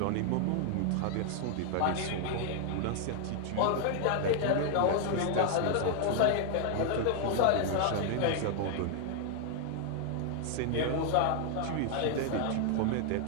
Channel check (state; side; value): different; both; correlation 0.00